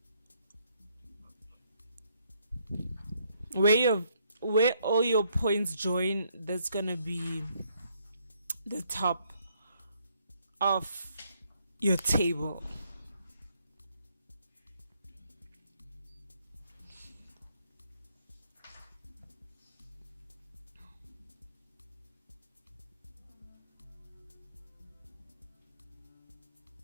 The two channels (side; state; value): both; inverted; correlation -0.70